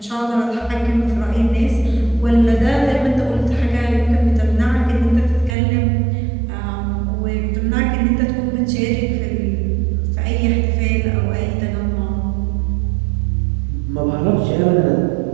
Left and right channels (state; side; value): drops out; left; at 5.6 s